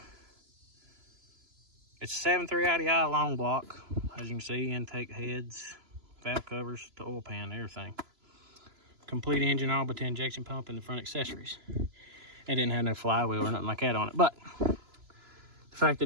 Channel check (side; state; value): left; late; 3.0 ms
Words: It's a 7.3 IDI long block. As you can see, intake heads, valve covers, the oil pan, everything. Complete engine, all but the injection pump and the front accessories. It didn't have no flywheel or nothing like that on it, but the fact